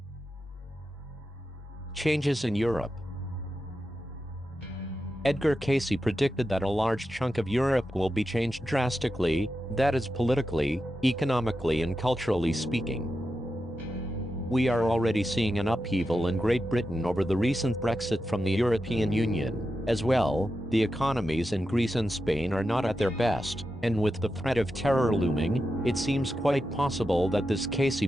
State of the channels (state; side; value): normal; both; correlation 0.89